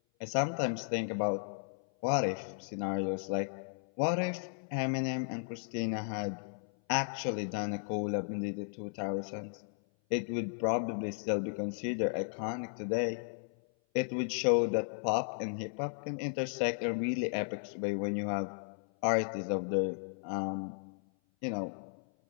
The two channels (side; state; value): right; silent; 55 dB below the other